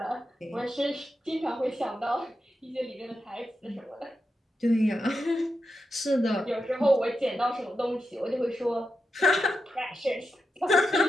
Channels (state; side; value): normal; both; correlation 0.88